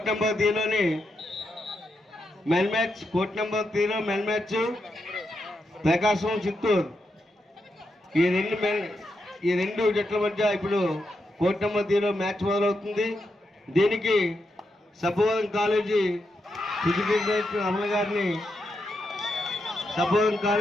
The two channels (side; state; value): both; normal; correlation 0.84